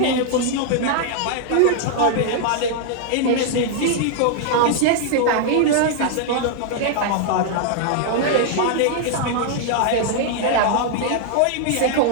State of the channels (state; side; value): different; both; correlation 0.00